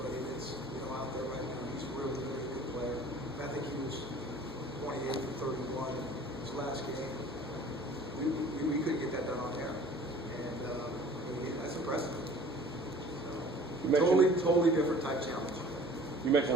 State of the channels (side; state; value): both; normal; correlation 0.48